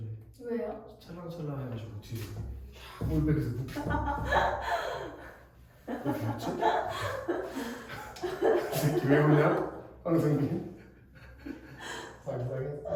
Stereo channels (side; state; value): both; identical; correlation 1.00